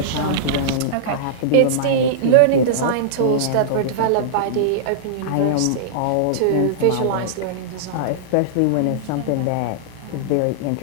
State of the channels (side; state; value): both; different; correlation -0.02